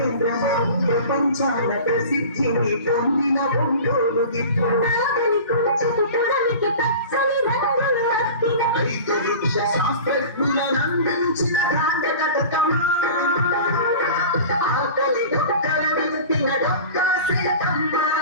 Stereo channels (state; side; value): inverted; both; correlation -0.38